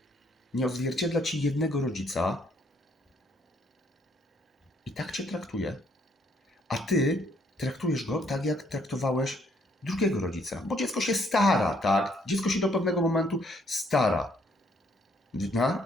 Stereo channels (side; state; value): both; normal; correlation 0.68